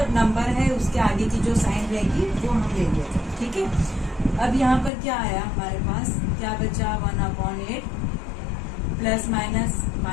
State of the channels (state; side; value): drops out; right; at 4.9 s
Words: नंबर है उसके आगे की जो साइन रहेगी वो हम लेंगे। ठीक है, अब यहाँ पर क्या आया हमारे पास, क्या बचा 1 upon 8 plus minus